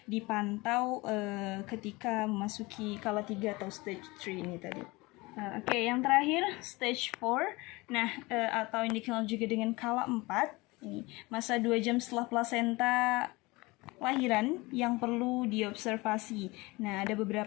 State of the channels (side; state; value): right; quieter; 23.1 dB